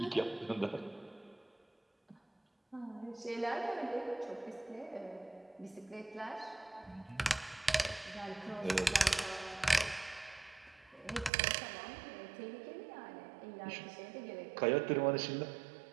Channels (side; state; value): left; drops out; at 11.3 s